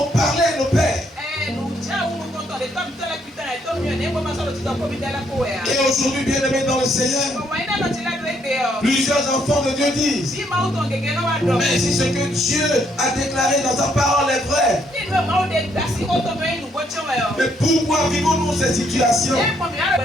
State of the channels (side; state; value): both; normal; correlation 0.71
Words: on parlait à nos pères? Et aujourd'hui, bien-aimés dans le Seigneur, plusieurs enfants de Dieu disent, mais si ce que Dieu a déclaré dans sa parole est vrai, mais pourquoi vivons-nous ces situations?